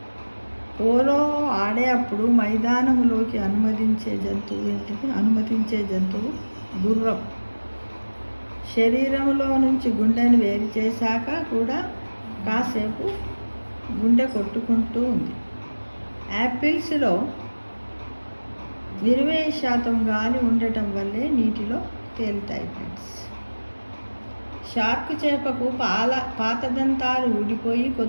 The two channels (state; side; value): inverted; both; correlation -1.00